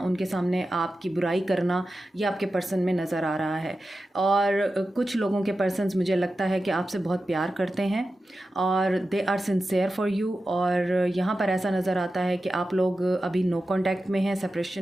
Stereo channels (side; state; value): both; normal; correlation 0.92